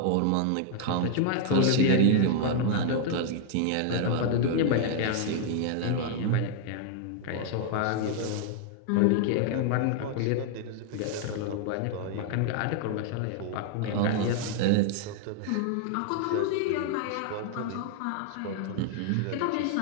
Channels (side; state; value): both; different; correlation 0.00